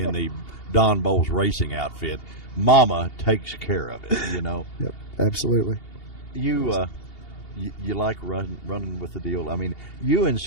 Don Bowles racing outfit. Mama takes care of it. Yep, absolutely. You like running with the deal. I mean, you and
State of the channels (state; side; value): late; right; 2.8 ms